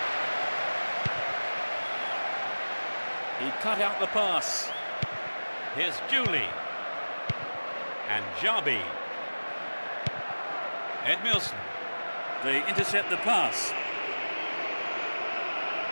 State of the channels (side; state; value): both; inverted; correlation -1.00